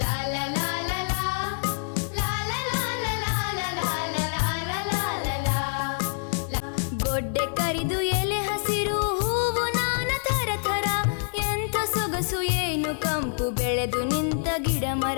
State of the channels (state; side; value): silent; right; 61 dB below the other